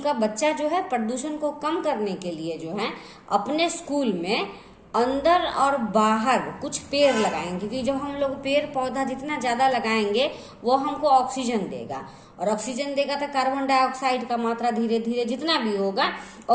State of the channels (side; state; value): both; identical; correlation 1.00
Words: का बच्चा जो है प्रदूषण को कम करने के लिए जो है अपने स्कूल में अंदर और बाहर कुछ पेड़ लगाएंगे, क्योंकि जब हम लोग पेड़ पौधा जितना ज्यादा लगाएंगे वो हमको ऑक्सीजन देगा, और ऑक्सीजन देगा तो कार्बन डाइऑक्साइड का मात्रा धीरे धीरे जितना भी होगा